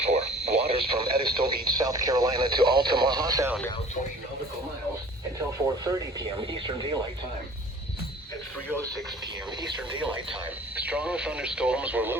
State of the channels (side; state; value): both; normal; correlation 0.48